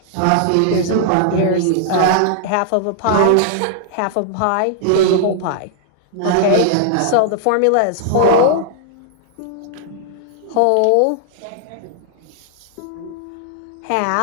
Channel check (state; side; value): different; both; correlation -0.01